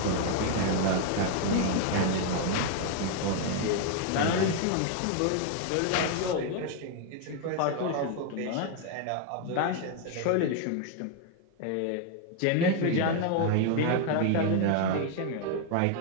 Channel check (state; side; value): different; both; correlation 0.00